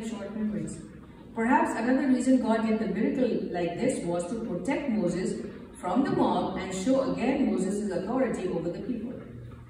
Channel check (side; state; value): both; identical; correlation 1.00